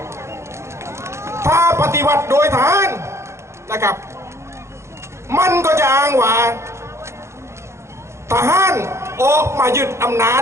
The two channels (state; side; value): late; left; 0.13 ms